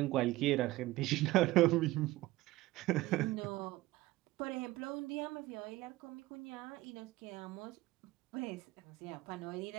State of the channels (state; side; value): quieter; left; 18.1 dB